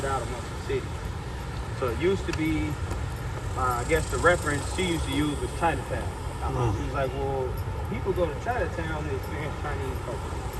out amongst the city. So it used to be, I guess the reference she used to use was Chinatown. She was like, well, people go to Chinatown to experience Chinese culture.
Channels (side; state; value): both; identical; correlation 1.00